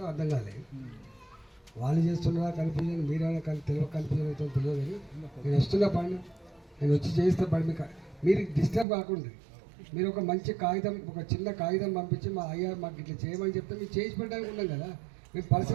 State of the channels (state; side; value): drops out; left; at 8.8 s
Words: అర్థం కాలేదు. వాళ్ళు చేస్తున్నారా కన్ఫ్యూజన్, మీరైనా కన్ఫ్యూజన్ అవుతుందో తెలియదు. కానీ నేను వస్తున్నా పని, నేను వచ్చి చేస్తే పని మీరు డిస్టర్బ్ కాకుండా మీరు ఒక మంచి కాగితం, ఒక చిన్న కాగితం పంపించి అయ్యా మాకు ఇట్లా చేయమని చెప్తే మీరు చేసి పెట్టడానికి ఉన్నాం కదా. మేము